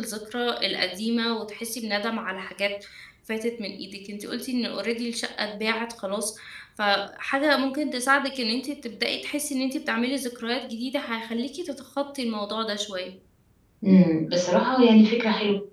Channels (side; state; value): both; identical; correlation 1.00